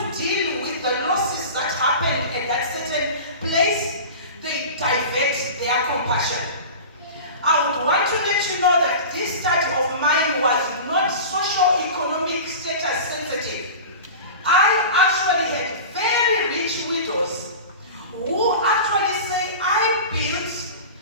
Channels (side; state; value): both; inverted; correlation -0.33